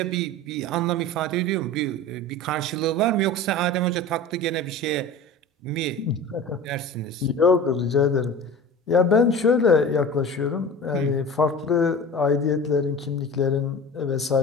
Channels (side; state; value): both; normal; correlation 0.35